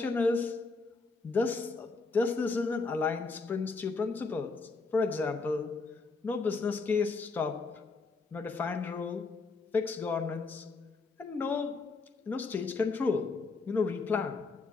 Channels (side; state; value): right; quieter; 4.0 dB